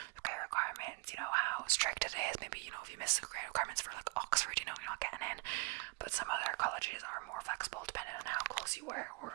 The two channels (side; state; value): left; quieter; 28.6 dB